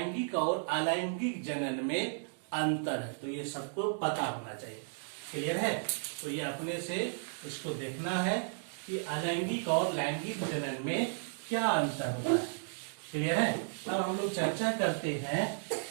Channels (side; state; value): left; silent; digital silence